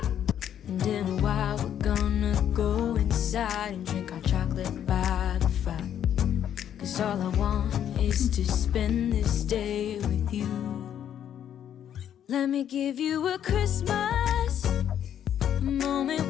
And in a while we're gonna go inside and drink our chocolate by the fire. 'Cause all I want is to spend this day with you. Let me give you a Christmas, a moment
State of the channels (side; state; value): right; quieter; 9.9 dB